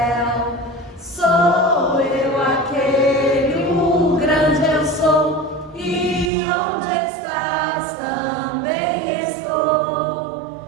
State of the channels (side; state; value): left; drops out; at 6.3 s